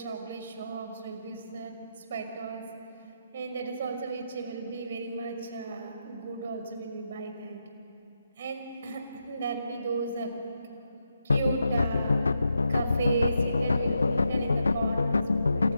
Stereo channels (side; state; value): both; inverted; correlation -0.84